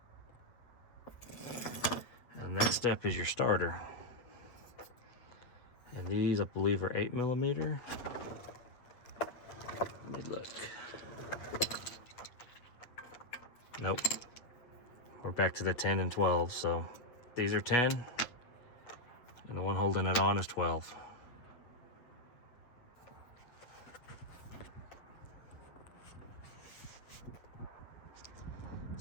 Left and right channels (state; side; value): late; right; 8.5 ms